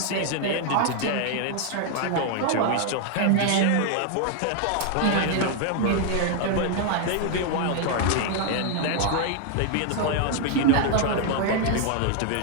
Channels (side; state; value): both; different; correlation 0.00